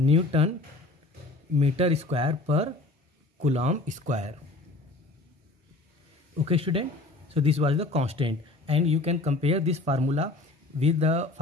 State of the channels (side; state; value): right; quieter; 3.2 dB